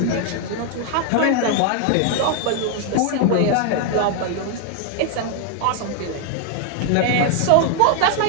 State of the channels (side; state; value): both; different; correlation 0.00